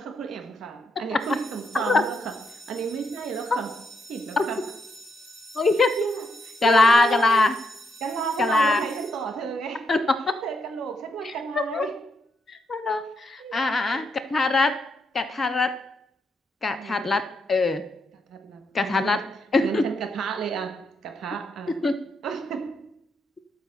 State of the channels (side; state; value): both; normal; correlation 0.79